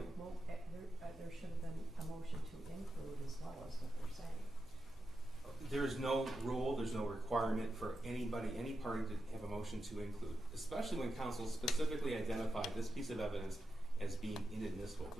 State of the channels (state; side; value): noise; right; hum, 26 dB below the sound